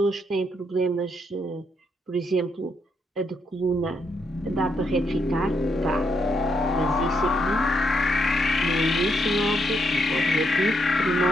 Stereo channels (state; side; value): normal; both; correlation 0.77